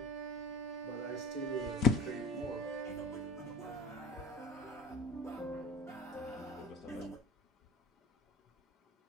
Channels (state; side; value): normal; both; correlation 0.38